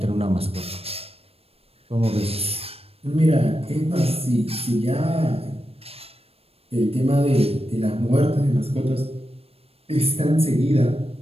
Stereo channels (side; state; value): left; late; 0.28 ms